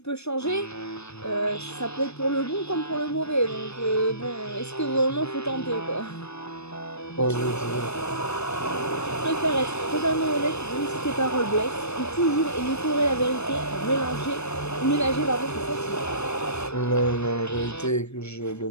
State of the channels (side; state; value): right; late; 0.80 ms